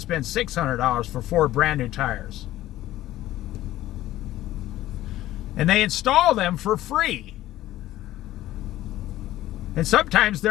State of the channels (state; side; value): quieter; right; 14.8 dB